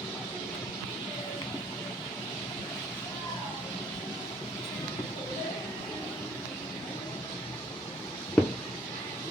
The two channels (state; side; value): normal; both; correlation 0.62